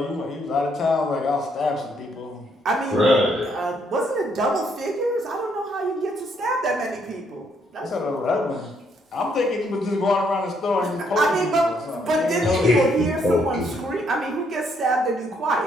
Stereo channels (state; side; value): normal; both; correlation 0.71